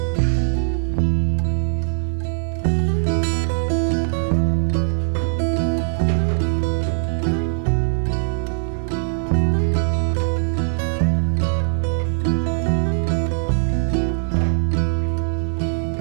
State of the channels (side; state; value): left; silent; 65 dB below the other